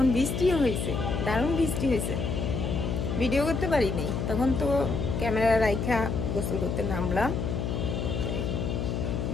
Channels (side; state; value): left; noise; hum, 2 dB below the sound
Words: বৃষ্টিও হয়েছে, দারুণ বৃষ্টি হয়েছে। ভিডিও করতে পারিনি তখন, তো ক্যামেরা রাইখা গোসল করতে নামলাম।